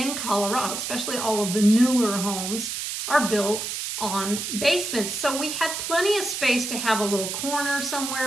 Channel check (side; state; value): right; noise; hiss, 4 dB below the sound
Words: Colorado, especially all of the newer homes are built on basements. So we had plenty of space to have a little corner